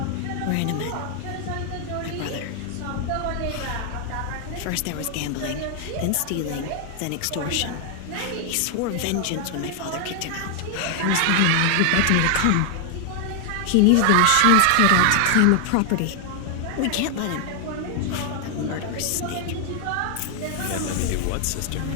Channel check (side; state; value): both; different; correlation 0.00